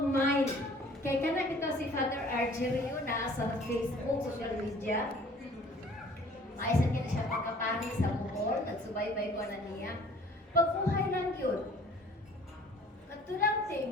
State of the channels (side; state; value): both; normal; correlation 0.52